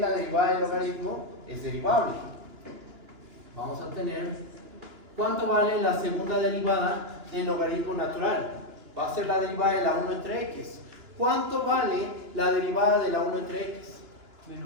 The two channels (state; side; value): late; left; 2.9 ms